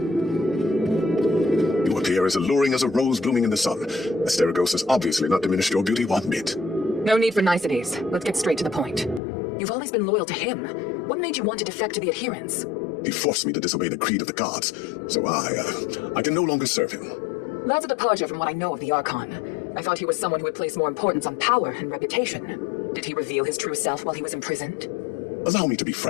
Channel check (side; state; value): right; drops out; at 9.2 s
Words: You appear as alluring as a rose blooming in the sun. Asterigos has obviously not diminished your beauty one bit. No need for niceties. Let's get straight to the point. You've always been loyal to him. What made you want to defect to the adherents? He forced me to disobey the creed of the gods, so I can no longer serve him. That's a departure from what I know of the Archon. I thought he was someone who would place more importance on power and reputation. Did he reveal his true self while he was imprisoned? Allow me to be